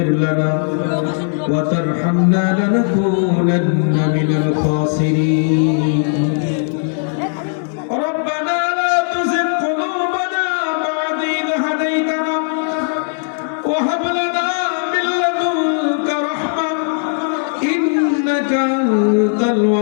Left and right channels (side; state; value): right; silent; 68 dB below the other